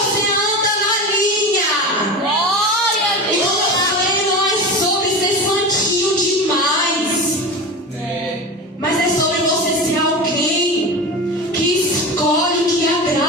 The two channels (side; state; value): both; normal; correlation 0.26